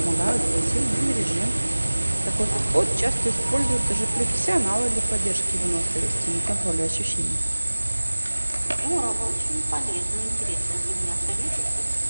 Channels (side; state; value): both; inverted; correlation -1.00